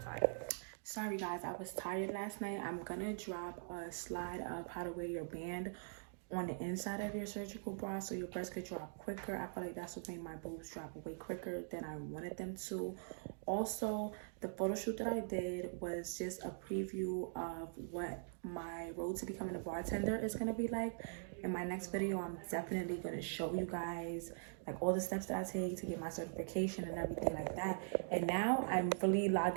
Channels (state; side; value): silent; left; digital silence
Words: Sorry guys, I was tired last night. I'm gonna drop a slide of how to wear your band on the inside of your surgical bra so your breasts could drop quicker. I feel like that's what made my boobs drop way quicker than I wanted them to. Also, the photo shoot that I did was just a preview of what my road to becoming a bartender is gonna be like. In my next video, I'm definitely gonna show you guys like all the steps that I take to get my certification and everything like that. And now I'm really